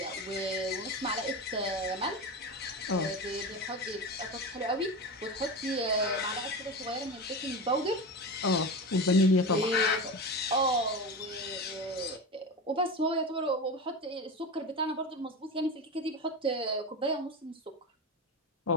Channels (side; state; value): both; normal; correlation 0.24